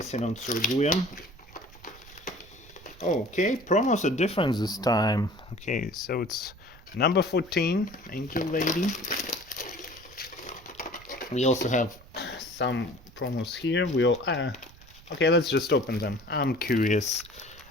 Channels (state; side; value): noise; right; rumble, 22 dB below the sound